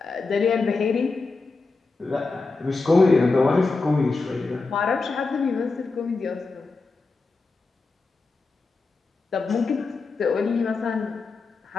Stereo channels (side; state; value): right; quieter; 3.9 dB